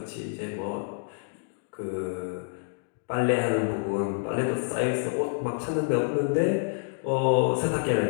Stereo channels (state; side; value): silent; right; digital silence